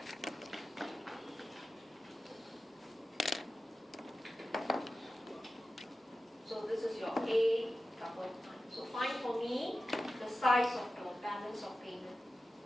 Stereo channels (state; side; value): normal; both; correlation 0.94